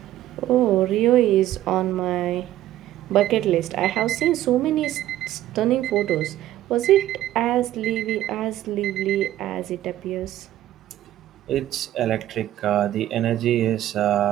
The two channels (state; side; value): quieter; left; 13.5 dB